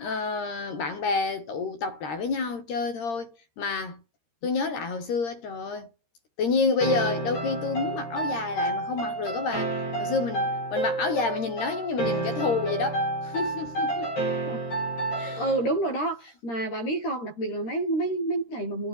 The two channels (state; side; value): late; right; 13 ms